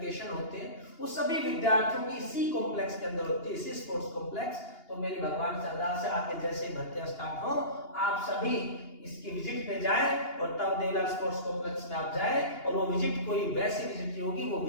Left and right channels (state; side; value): late; right; 2.8 ms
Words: होते हैं, वो सभी विद्यार्थियों की इसी कॉम्प्लेक्स के अंदर होती है, इसी स्पोर्ट्स कॉम्प्लेक्स। तो मेरी भगवान से अरदास है, आके जैसे ही भर्तियां स्टार्ट हो आप सभी इसकी विजिट पे जाए और तब देवीलाल स्पोर्ट्स कॉम्प्लेक्स में आप जाए। और वो विजिट कोई वैसी विजिट नहीं होगी, वो